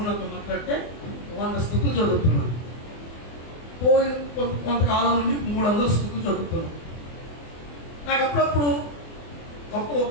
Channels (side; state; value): right; late; 24 ms